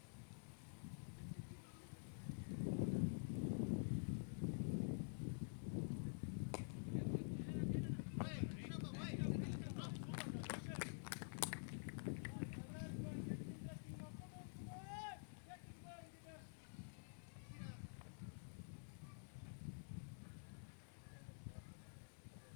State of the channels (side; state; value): right; silent; digital silence